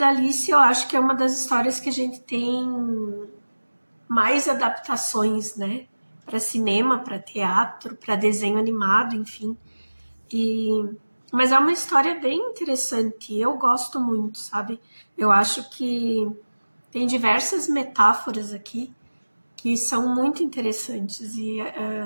Alice, eu acho que é uma das histórias que a gente tem mais adaptações, né? Para cinema, para teatro, para desenho animado, enfim. Mas é uma história bem interessante. Eu gosto muito, sabe? Eu acho que tem diversas metáforas aqui que são muito interessantes. E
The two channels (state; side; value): inverted; both; correlation -1.00